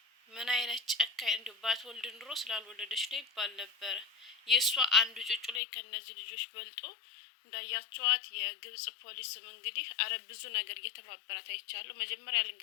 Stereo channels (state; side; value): drops out; right; at 5.6 s